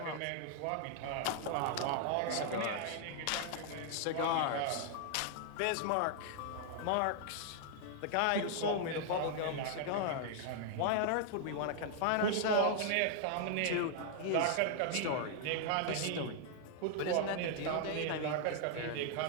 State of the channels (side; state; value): both; different; correlation 0.00